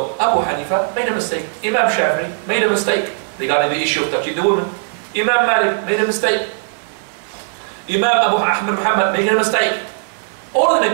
Abu Hanifa made a mistake. Imam Shafi'i made a mistake regarding the issue of touching the woman. Imam Malik made a mistake. Imam Abu Ahmad Muhammad made a mistake. All of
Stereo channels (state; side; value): silent; left; digital silence